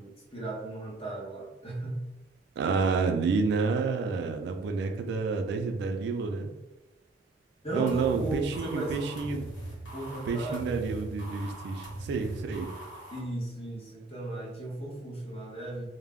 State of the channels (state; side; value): quieter; left; 3.8 dB